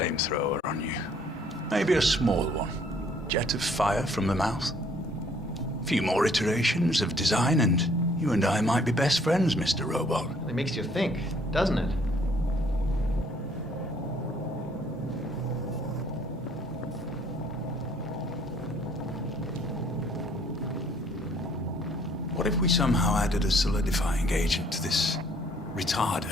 on you? Maybe a small one. Jet of fire from the mouth. A few more iterations of design and you and I might be best friends, Mr. Robot. It makes you think, doesn't it? What if we somehow added a solidifying agent to this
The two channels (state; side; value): normal; both; correlation 0.61